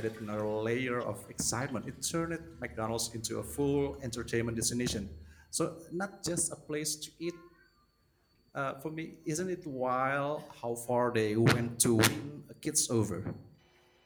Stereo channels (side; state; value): both; identical; correlation 1.00